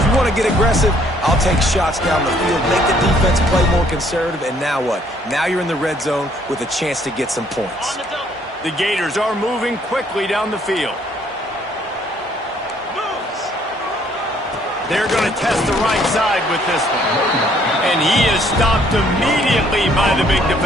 you want to get aggressive, I'll take shots down the field, make the defense play more conservative, and now what? Now you're in the red zone with a chance to get some points. The Gators are moving quickly down the field. They're going to test the right side with this one. And he is stopped immediately by the big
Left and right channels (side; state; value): both; normal; correlation 0.64